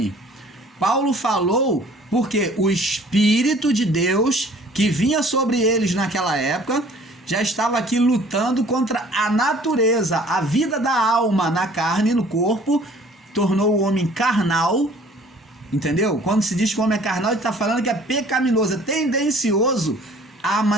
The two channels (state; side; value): normal; both; correlation 0.53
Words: Paulo falou porque o Espírito de Deus que vinha sobre eles naquela época já estava aqui lutando contra a natureza, a vida da alma na carne, no corpo, tornou o homem carnal, entendeu? Quando se diz que o homem é carnal, ele está falando que é pecaminoso, é tendencioso a